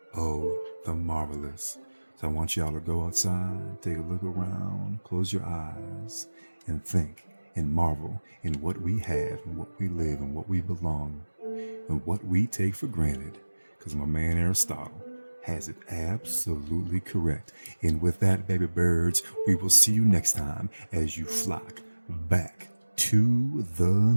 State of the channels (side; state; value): both; inverted; correlation -1.00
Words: of the marvelous. So I want y'all to go outside, take a look around, close your eyes, and think and marvel in what we have and what we live and what we belong and what we take for granted. Because my man Aristotle has it absolutely correct. And with that, baby birds, we will see you next time as you flock back to the